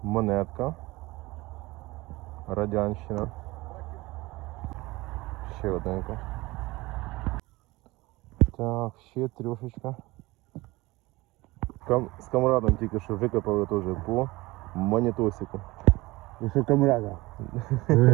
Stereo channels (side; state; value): left; quieter; 20.9 dB